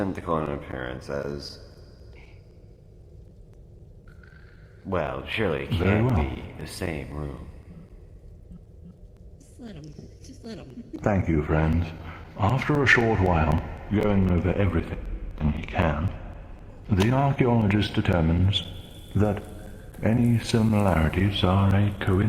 in appearance as... Well, surely it Very can't well. be the same room. Just let him. Thank you, friends. After a short while, going over everything he can, the archaeologist determines that any similarities are a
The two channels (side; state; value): both; identical; correlation 1.00